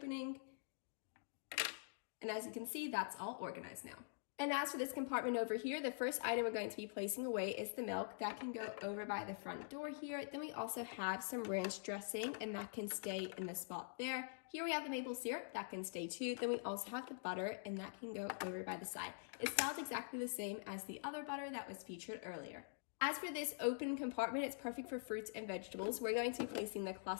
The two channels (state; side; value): silent; right; digital silence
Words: And as you can see, that's all organized now. And as for this compartment over here, the first item we're going to be placing away is the milk. That can go over by the front door here. Then we also have some ranch dressing, and that can stay in the spot there. Here we have the maple syrup, that can stay too. Then we also have the butter, and that can go over by the side. It's styled exactly the same as the other butter that was featured earlier. As for this open compartment, it's perfect for fruits and vegetables. We're going to be placing the